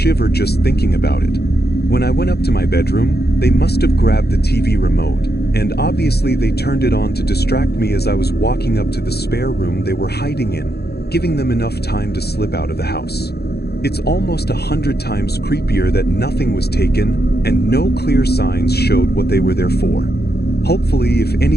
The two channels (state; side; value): late; right; 0.47 ms